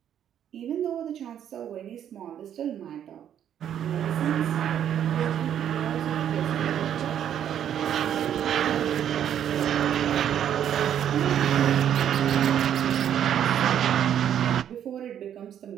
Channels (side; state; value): left; quieter; 9.8 dB